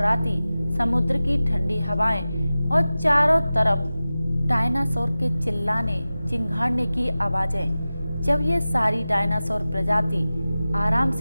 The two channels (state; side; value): inverted; both; correlation -0.96